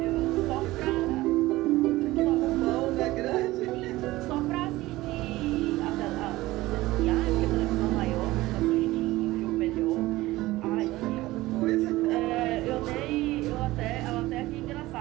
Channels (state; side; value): quieter; left; 18.2 dB